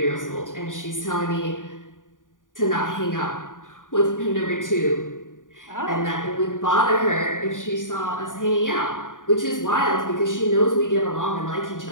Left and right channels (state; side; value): late; right; 0.88 ms